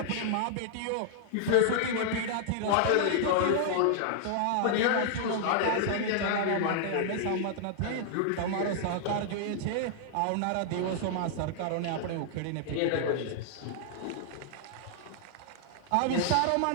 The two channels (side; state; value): both; different; correlation -0.01